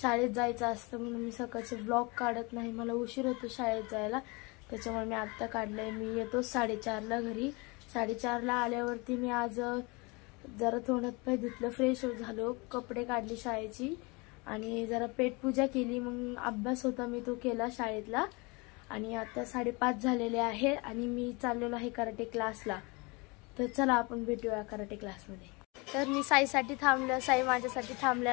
शाळेत जायचं असतं म्हणून मी सकाळचे व्लॉग काढत नाही, मला उशीर होतो शाळेत जायला, त्याच्यामुळे मी आत्ता काढलंय। मी येतो 4:30ला घरी। 4:30ला आल्यावरती मी आज जरा तोंडात पाय धुतलं, फ्रेश झालो, कपडे काढले शाळेची आणि जरा पेटपूजा केली। मग अभ्यास होता मी तो केला शाळेतला आणि आता 5:30 झालेले आहे आणि मी चाललेलो आहे कराटे क्लासला। तर चला आपण भेटूया कराटे क्लासमध्ये। तर मी साईसाठी थांबलं, साई माझ्यासाठी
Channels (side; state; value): right; quieter; 27.6 dB